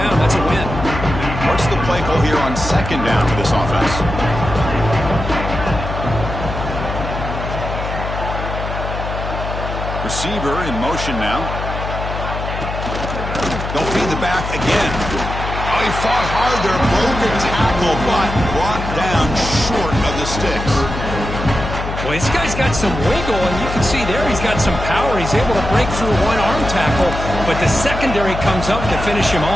that's a win. What's the play call here on second down for this offense? Receiver in motion now. They'll feed the back again. Oh, he fought hard there. Broken tackle, but brought down short of the sticks. Well, this guy's got some wiggle, and you can see there he's got some power. He's able to break through one arm tackle, but the secondary comes up to finish him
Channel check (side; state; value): left; noise; hum, 6 dB below the sound